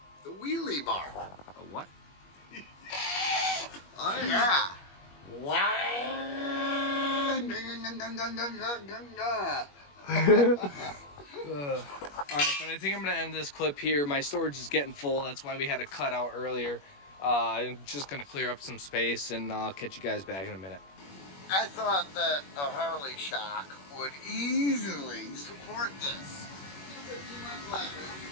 The wheelie bar. A what? Oh, yeah. Alright, but I think I'm going to end this clip here. My storage is getting full. That's why we had to cut out earlier. I'm just going to clear up some space, and I'll catch you guys back in a minute. I thought that a Harley Shock would easily support this.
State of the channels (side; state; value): right; late; 21 ms